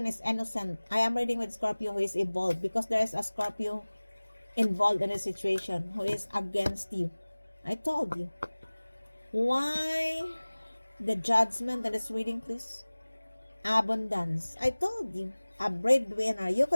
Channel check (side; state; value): both; inverted; correlation -1.00